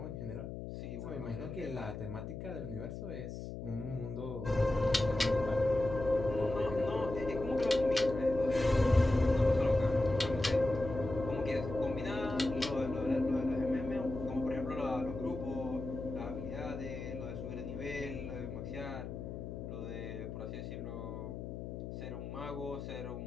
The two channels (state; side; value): noise; left; hum, 7 dB below the sound